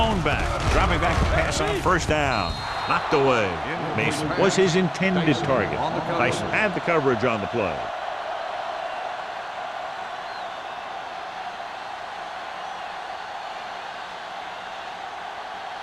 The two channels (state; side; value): identical; both; correlation 1.00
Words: back, dropping back to pass on first down. Knocked away. Mason was his intended target. Tyson had the coverage on the play.